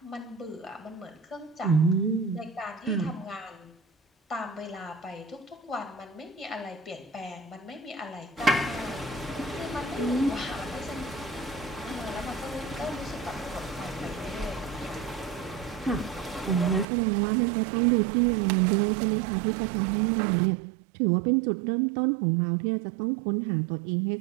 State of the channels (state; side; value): drops out; left; at 16.9 s